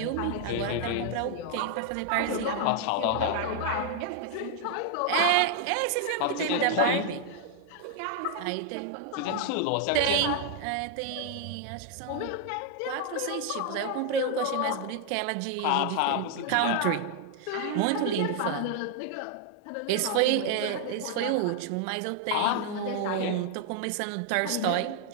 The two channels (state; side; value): different; both; correlation 0.00